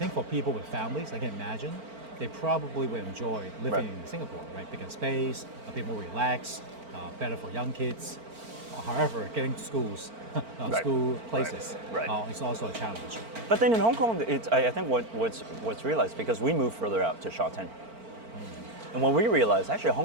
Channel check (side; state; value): left; late; 4.4 ms